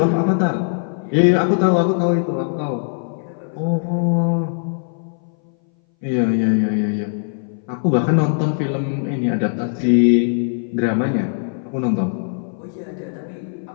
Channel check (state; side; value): silent; right; 61 dB below the other